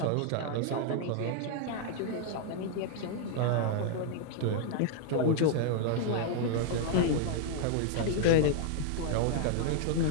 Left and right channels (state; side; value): different; both; correlation -0.01